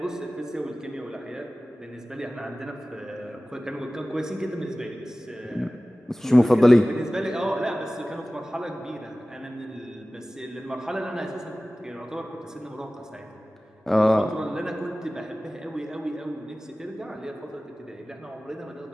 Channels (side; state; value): both; normal; correlation 0.97